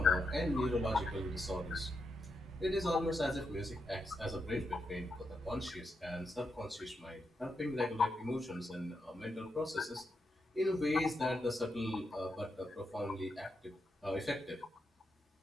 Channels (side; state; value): both; normal; correlation 0.84